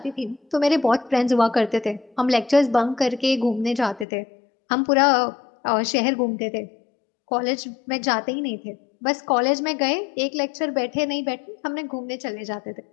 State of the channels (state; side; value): drops out; right; at 4.0 s